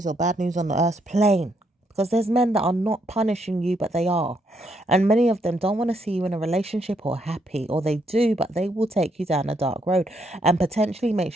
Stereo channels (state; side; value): normal; both; correlation 0.75